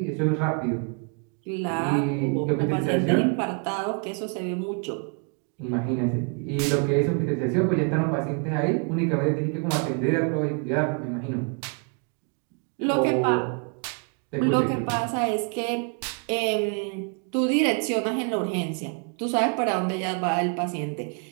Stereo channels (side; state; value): left; quieter; 38.1 dB